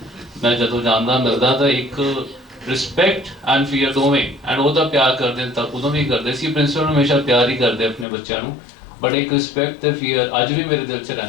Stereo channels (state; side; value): drops out; right; at 8.1 s